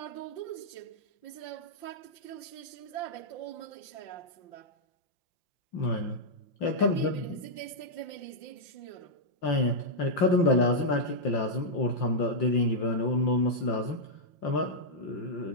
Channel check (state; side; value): late; right; 5.7 ms